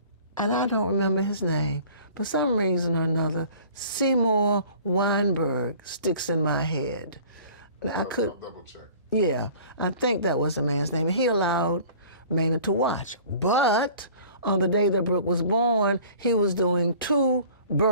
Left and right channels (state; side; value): inverted; both; correlation -0.48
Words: and I don't remember his name. For some reason or another, Seymour Weinberg sticks in my head. I could double check. Yeah, I think that was the man's name. He allowed Maynard to watch. But on the day that Brooke was born, he was doing 2